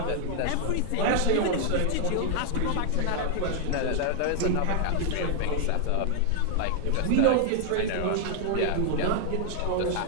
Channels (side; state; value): both; different; correlation 0.00